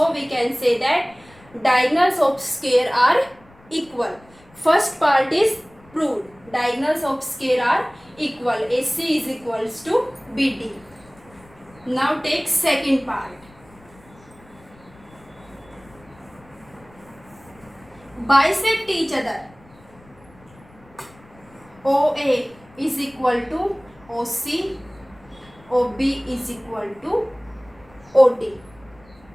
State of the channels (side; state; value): left; noise; rumble, 26 dB below the sound